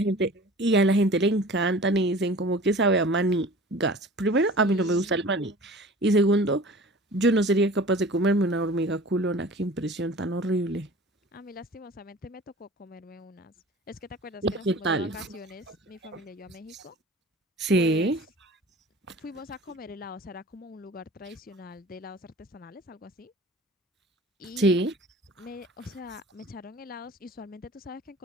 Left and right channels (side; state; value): both; normal; correlation 0.42